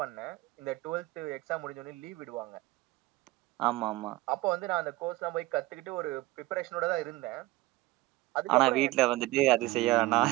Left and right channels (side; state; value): left; quieter; 19.2 dB